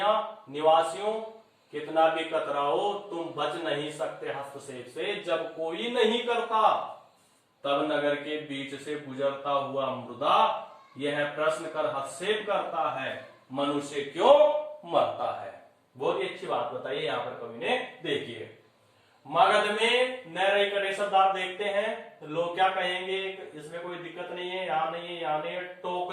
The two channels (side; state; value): both; identical; correlation 1.00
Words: कितना भी कतराओ, तुम बच नहीं सकते हस्तक्षेप से। जब कोई नहीं करता तब नगर के बीच से गुजरता हुआ मृदा यह प्रश्न कर हस्तक्षेप करता है, मनुष्य क्यों मरता है। बहुत ही अच्छी बात बताइए यहाँ पर कवि ने। देखिए, मगध में न रही करे शब्द आप देखते हैं, लोग क्या कहेंगे, इसमें कोई दिक्कत नहीं है, यहां नहीं है, यहां नहीं है।